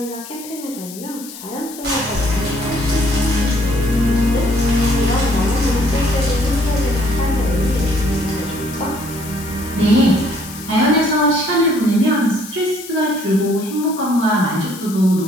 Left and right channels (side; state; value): left; noise; hiss, 14 dB below the sound